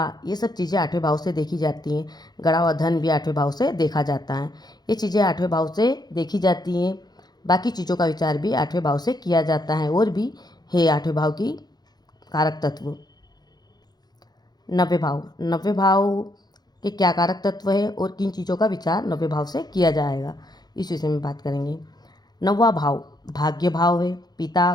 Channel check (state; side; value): late; right; 0.20 ms